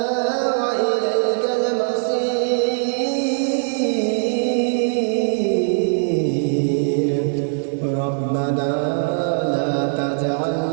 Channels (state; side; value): silent; left; digital silence